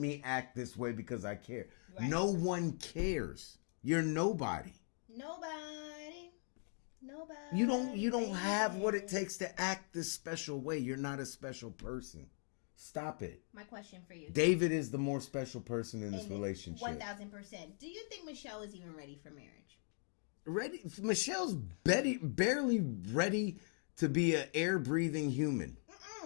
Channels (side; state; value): right; silent; 51 dB below the other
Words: act this way because I care. Right. No one cares. You're nobody. Nobody. You don't have what it takes to act this special way. You're not a special person. Stop it. My question for you. David is the more special person in this relationship. 1,000%. Do you think Michelle is even ready for marriage? Ready? Michelle's barely ready to be an air-breathing human.